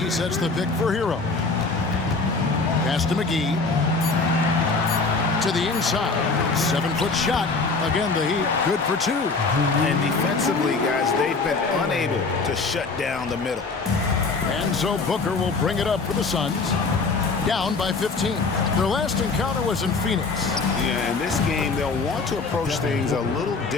sets the pick for Hero. Pass to McGee. To the inside. 7-foot shot. Again, the Heat good for 2. And defensively, guys, they've been unable to shut down the middle. And so Booker will bring it up for the Suns. Down by 15. Their last encounter was in Phoenix. Yeah, in this game, they'll want to approach things a little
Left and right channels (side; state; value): right; quieter; 4.1 dB